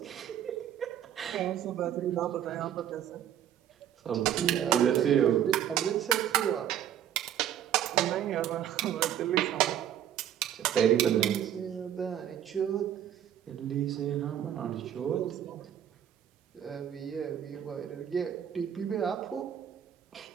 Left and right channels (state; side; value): quieter; left; 10.4 dB